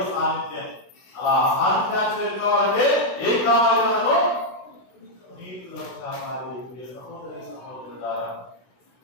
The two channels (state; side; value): late; right; 16 ms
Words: సాన్నిధ్యం. అలా సాన్నిధ్యాన్ని చేరుకోవాలంటే ఏం కావాలి? మనము పునీతులు సహకారి ప్రియ సహోదరి సహోదరులారా,